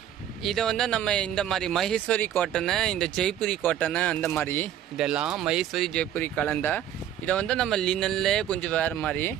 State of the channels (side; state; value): left; quieter; 10.6 dB